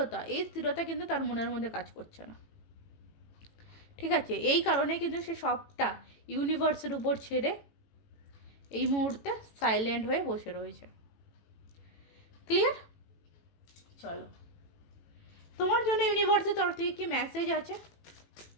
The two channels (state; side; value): late; right; 18 ms